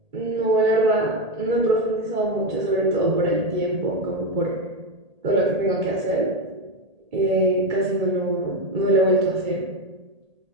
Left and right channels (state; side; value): late; left; 1.8 ms